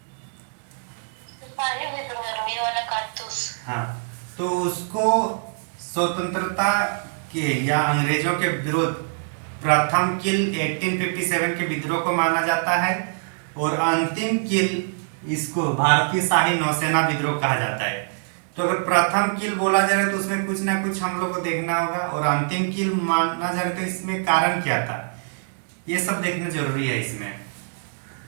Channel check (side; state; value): left; silent; digital silence